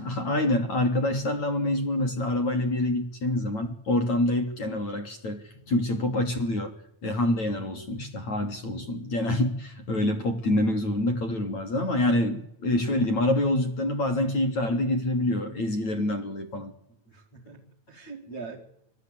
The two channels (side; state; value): right; late; 9.1 ms